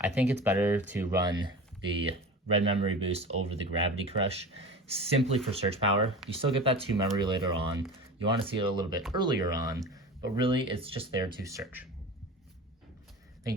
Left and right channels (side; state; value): both; normal; correlation 0.33